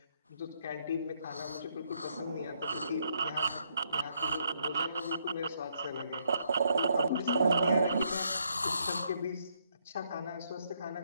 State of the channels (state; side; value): inverted; both; correlation -0.73